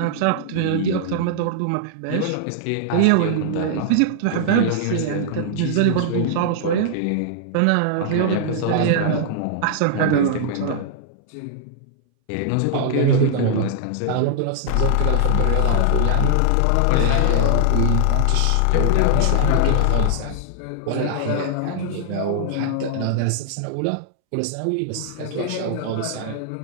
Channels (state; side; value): different; both; correlation -0.01